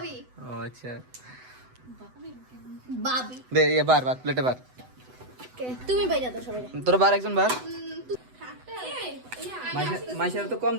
আচ্ছা, দে এ বার প্লেটে বার। তুমি বাইরে দাও সবাই। তোর বার একজন বার। মাইশার তো কম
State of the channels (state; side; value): late; left; 8.0 ms